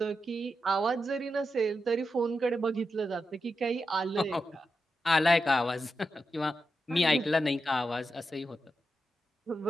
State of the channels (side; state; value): both; normal; correlation 0.88